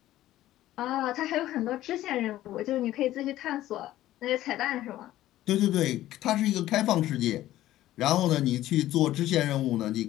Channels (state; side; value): quieter; right; 14.4 dB